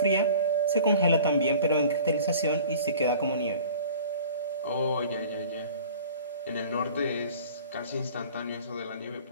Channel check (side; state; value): both; inverted; correlation -0.44